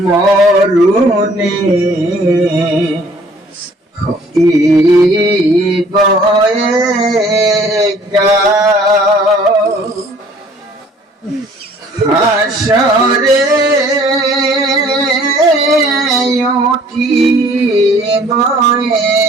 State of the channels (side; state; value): both; normal; correlation 0.56